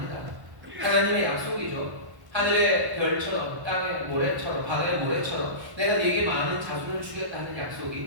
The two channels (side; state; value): left; late; 1.1 ms